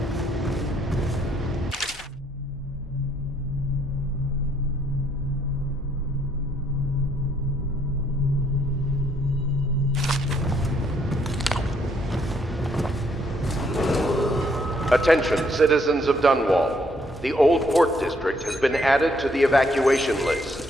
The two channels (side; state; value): both; normal; correlation 0.69